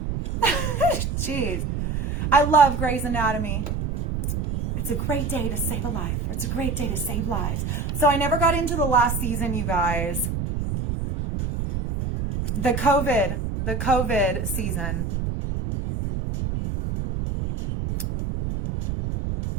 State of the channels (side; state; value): right; noise; rumble, 2 dB below the sound